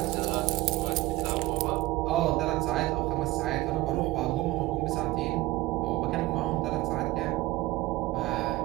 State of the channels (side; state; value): left; quieter; 18.5 dB